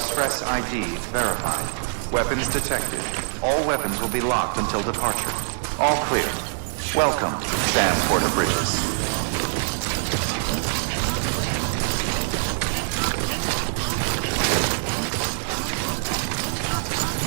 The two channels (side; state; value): left; silent; 63 dB below the other